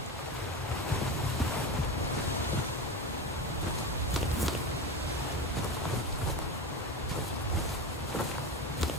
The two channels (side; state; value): both; normal; correlation 0.22